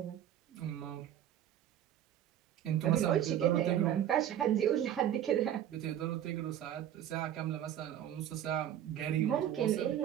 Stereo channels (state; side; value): quieter; left; 10.9 dB